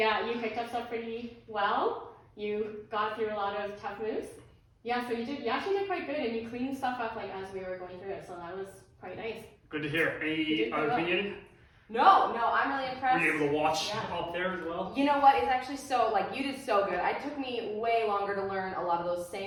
you picked up stuff pretty well. You got through a lot of tough moves. Yeah, so you actually did quite good, and you cleaned stuff up like as we were going through it, so that was quite nice. Good to hear. You Any did other well. opinion? No, I'm really Were impressed. you able to watch Yeah. up there as well? You know what? It's actually so, like, you did so good. It took me way longer to learn a lot of those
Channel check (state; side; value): identical; both; correlation 1.00